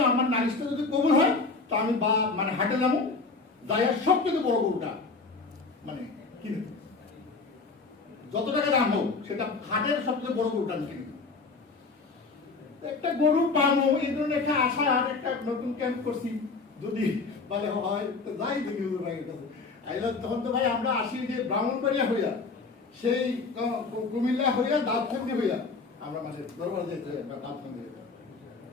আমার নালিশটা যদি কবুল হয় তা আমি মানে হাটে যাবো, যাই সব থেকে বড় গরুটা মানে কিনে দেবো, যত টাকা দাম হোক সেটা হাটের সবচেয়ে বড় গরুটা আমি কিনে দেবো। একটা গরু পাবো এই ধরনের একটা আশা, আর একটা নতুন ক্যাম্প করছি, যদি বলে হয় তো যাই দেখি ভাইয়ের কাছে আইলাম। তখন তো ভাই আমরা আসি যে ব্রাহ্মণবাড়িয়া হইয়া, সেই কুমিল্লা হইয়া দাঁতখান্দি হইয়া আমরা মানে দরবার যেতে হয়, দাঁতখান্দি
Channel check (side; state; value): right; quieter; 4.1 dB